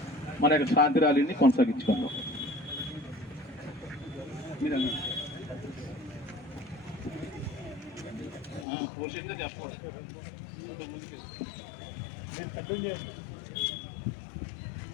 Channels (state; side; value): drops out; right; at 8.7 s